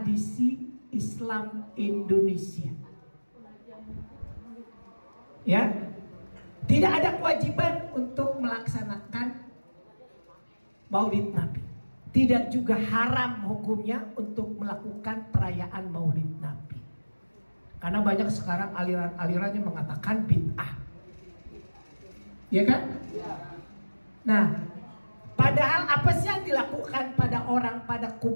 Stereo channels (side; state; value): both; inverted; correlation -1.00